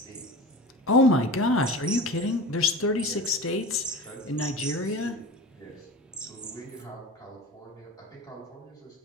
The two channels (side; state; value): both; normal; correlation 0.33